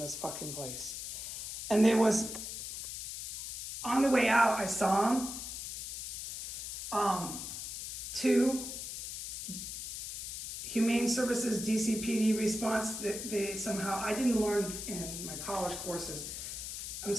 fucking place. And there was, on the way out, I saw him. Two Humane Services DCPD response that they somehow, I didn't learn in my college courses. I'm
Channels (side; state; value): left; noise; hiss, 6 dB below the sound